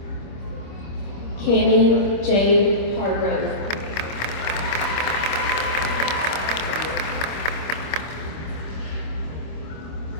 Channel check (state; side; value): late; right; 26 ms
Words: Cammie Jade Hargrove.